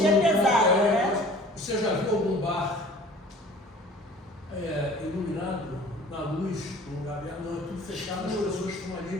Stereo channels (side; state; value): both; normal; correlation 0.47